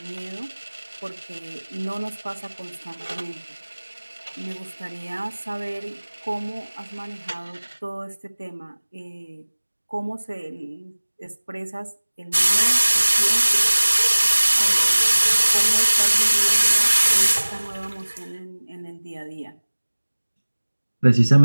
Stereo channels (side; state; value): both; inverted; correlation -1.00